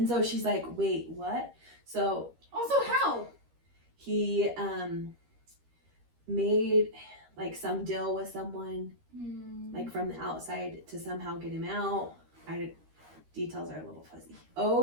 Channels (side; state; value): left; late; 13 ms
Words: so she's like, wait, what? So Also, how? he made, like, some deal with someone, like, from the outside to somehow get him out. Details are a little fuzzy.